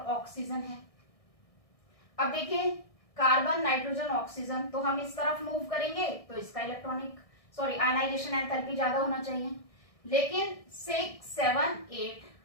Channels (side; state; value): right; late; 1.6 ms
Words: ऑक्सीजन है। अब देखिए कार्बन, नाइट्रोजन, ऑक्सीजन, तो हम इस तरफ मूव करेंगे तो इसका आयनाइजेशन एंथैल्पी ज्यादा होना चाहिए, लेकिन 6, 7, 8,